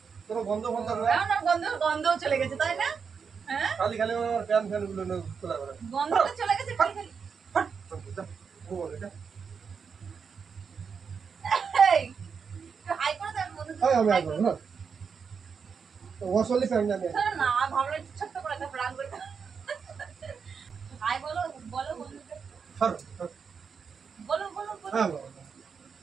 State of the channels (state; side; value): quieter; left; 6.1 dB